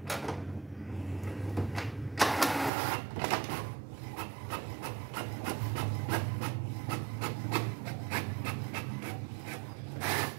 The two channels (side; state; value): left; drops out; at 2.7 s